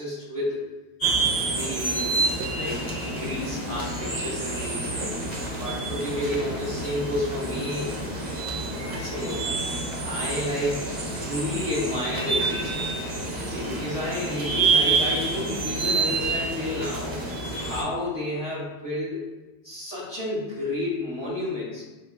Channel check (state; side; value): late; right; 10 ms